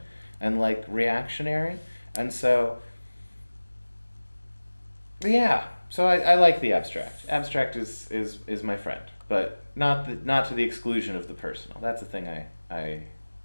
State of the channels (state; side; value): inverted; both; correlation -1.00